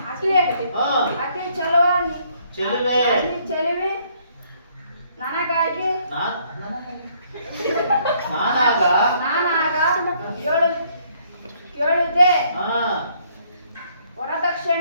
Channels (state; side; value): inverted; both; correlation -0.66